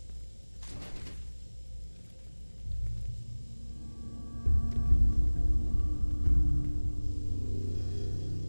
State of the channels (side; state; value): both; inverted; correlation -1.00